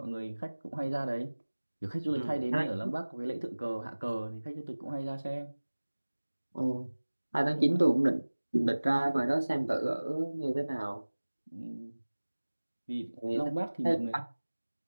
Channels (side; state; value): both; inverted; correlation -1.00